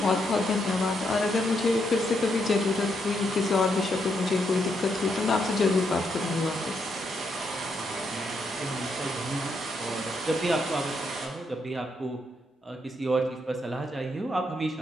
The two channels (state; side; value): normal; both; correlation 0.78